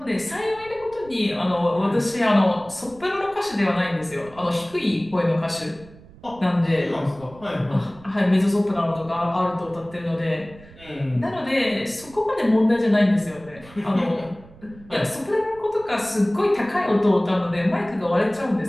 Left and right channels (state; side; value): noise; right; rumble, 22 dB below the sound